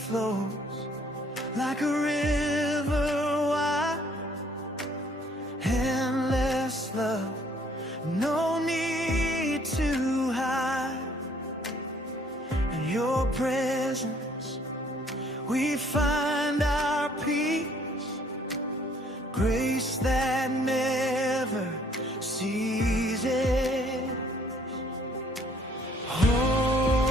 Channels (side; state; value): both; normal; correlation 0.61